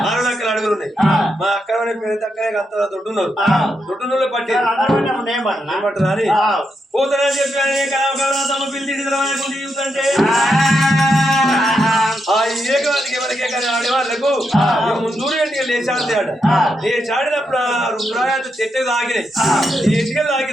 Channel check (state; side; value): normal; both; correlation 0.83